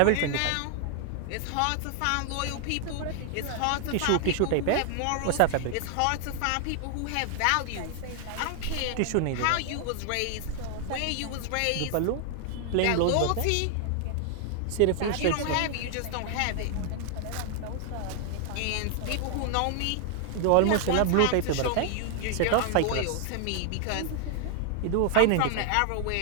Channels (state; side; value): different; both; correlation 0.00